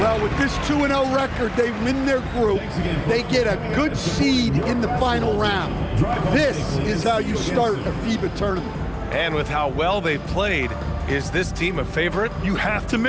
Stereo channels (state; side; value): identical; both; correlation 1.00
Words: with this 2-0 record, they win their group. They get a good seed in the final round. This is how you start a FIBA tournament. And with how well they've played, is this team a favorite? You have to